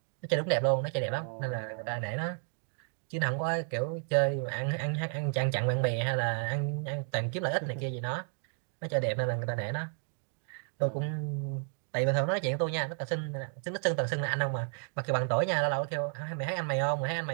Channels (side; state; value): left; silent; 56 dB below the other